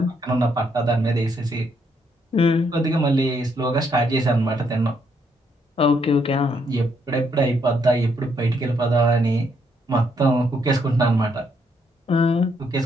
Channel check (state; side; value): normal; both; correlation 0.73